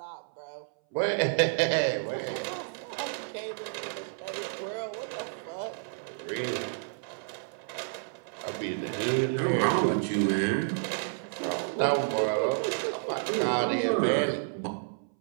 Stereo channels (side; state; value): left; silent; 58 dB below the other